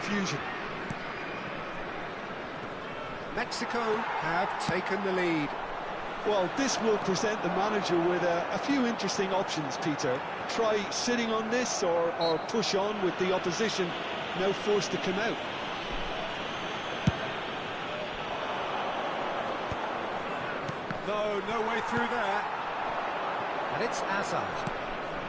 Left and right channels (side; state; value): both; identical; correlation 1.00